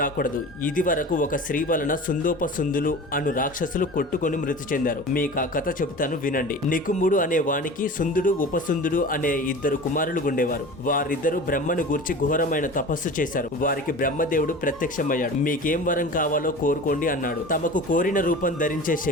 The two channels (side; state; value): both; normal; correlation 0.36